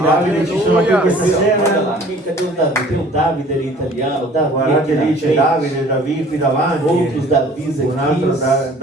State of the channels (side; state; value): both; normal; correlation 0.51